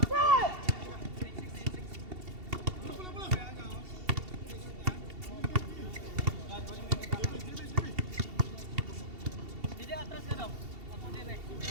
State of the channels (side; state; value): left; late; 2.7 ms